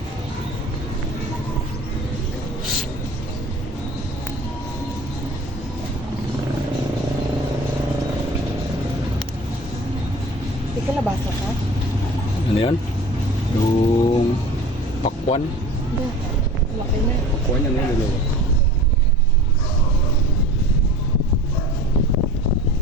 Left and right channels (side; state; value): both; normal; correlation 0.41